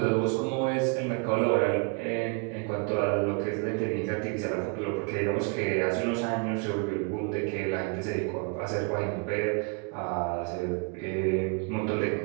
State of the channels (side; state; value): left; quieter; 35.1 dB